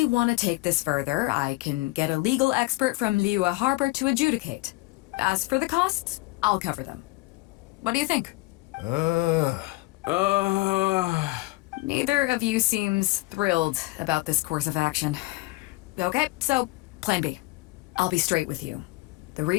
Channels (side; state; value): right; quieter; 22.2 dB